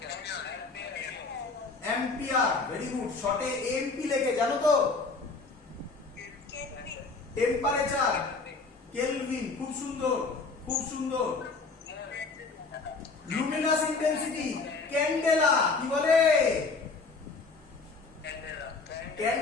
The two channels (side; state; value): right; quieter; 4.1 dB